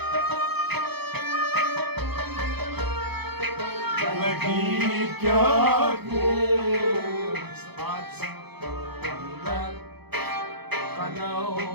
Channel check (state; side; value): late; left; 0.98 ms